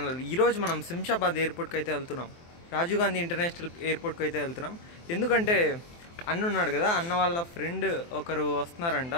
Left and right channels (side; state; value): right; late; 23 ms